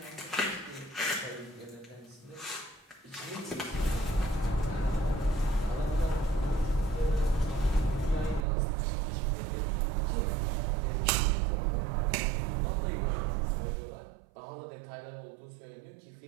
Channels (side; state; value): left; drops out; at 8.5 s